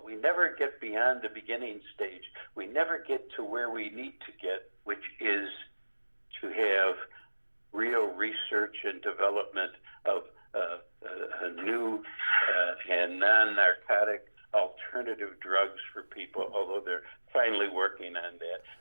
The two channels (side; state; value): both; inverted; correlation -1.00